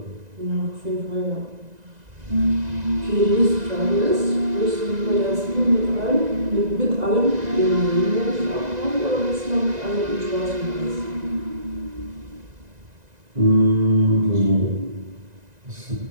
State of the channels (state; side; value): late; left; 1.9 ms